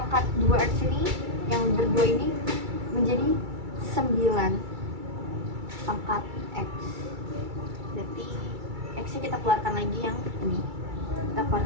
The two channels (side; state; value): left; late; 2.3 ms